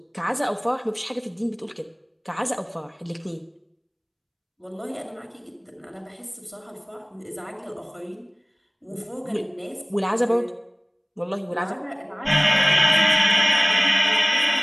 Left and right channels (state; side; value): identical; both; correlation 1.00